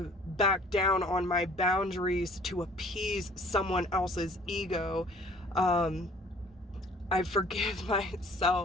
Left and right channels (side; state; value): both; normal; correlation 0.53